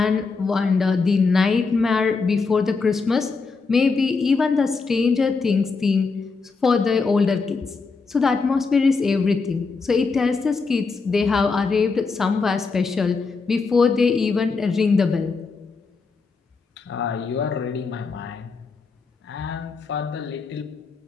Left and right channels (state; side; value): quieter; right; 4.5 dB